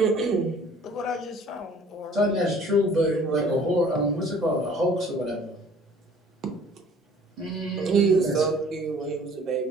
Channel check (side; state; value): both; normal; correlation 0.52